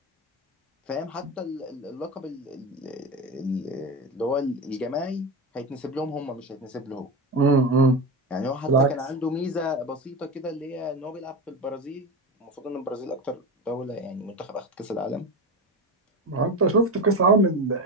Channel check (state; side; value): normal; both; correlation 0.22